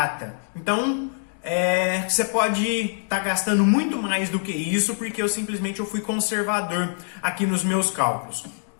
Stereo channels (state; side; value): silent; right; digital silence